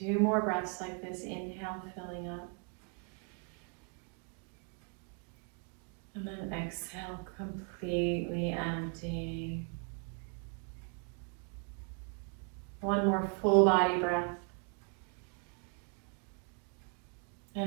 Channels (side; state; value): left; quieter; 39.2 dB